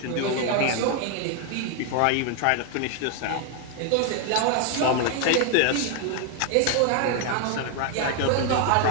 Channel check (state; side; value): different; both; correlation 0.00